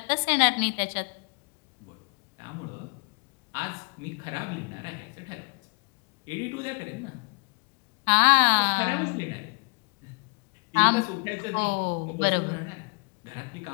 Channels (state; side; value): quieter; right; 35.3 dB